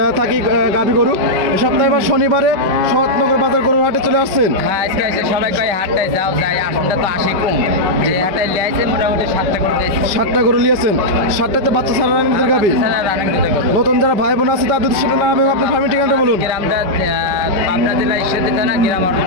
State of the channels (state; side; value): late; left; 5.2 ms